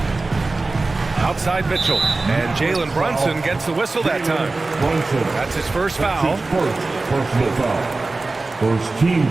Outside Mitchell. And Jalen Brunson gets the whistle that time. That's his first foul. Personal foul. First team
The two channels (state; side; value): quieter; left; 3.4 dB